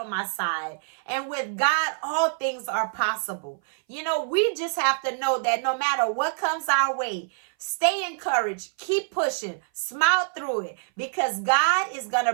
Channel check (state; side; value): silent; left; 57 dB below the other